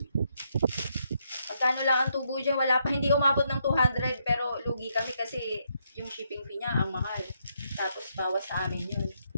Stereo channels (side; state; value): both; inverted; correlation -0.77